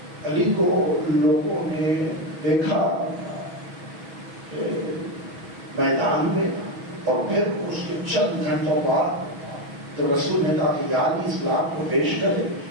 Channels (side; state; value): left; late; 6.2 ms